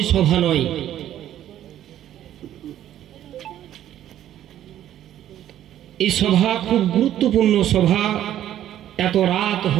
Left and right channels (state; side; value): quieter; left; 11.8 dB